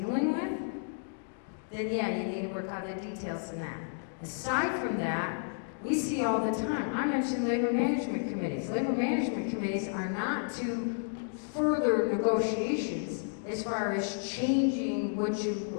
with, then yeah, you need to work out the details in that. Aside from that, we see all the time, I mentioned labor management committees. Labor management committees are not to further negotiations as far as changing what you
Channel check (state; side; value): silent; right; digital silence